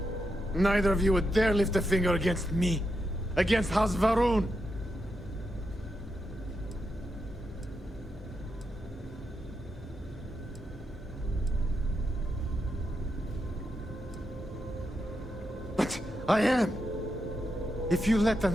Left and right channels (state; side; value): normal; both; correlation 0.85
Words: Neither of you would dare lift a finger against me. Against House Varun. But I am. If you let